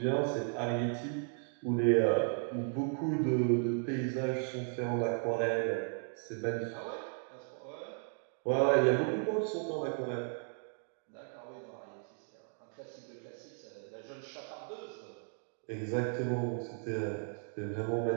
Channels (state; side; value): silent; left; 54 dB below the other